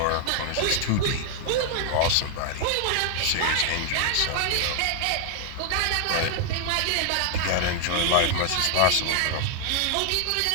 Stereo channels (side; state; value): both; different; correlation 0.00